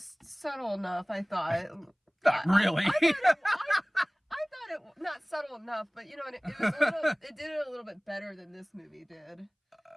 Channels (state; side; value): identical; both; correlation 1.00